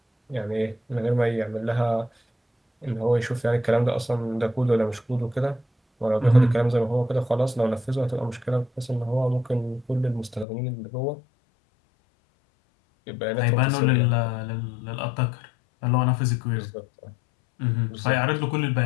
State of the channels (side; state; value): right; drops out; at 10.5 s